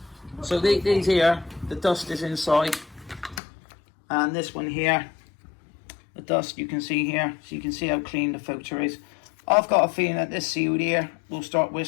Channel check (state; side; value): drops out; right; at 3.4 s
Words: So these here, the dust is inside. And this one here, the dust you can see here. So you can see how clean the filter is. I've got a feeling that this sealed here will start